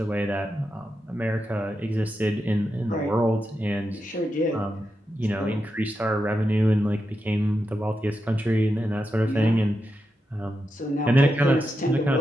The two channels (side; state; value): both; normal; correlation 0.87